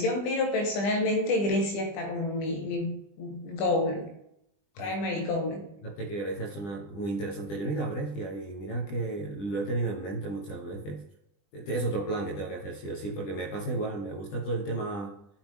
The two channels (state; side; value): late; right; 20 ms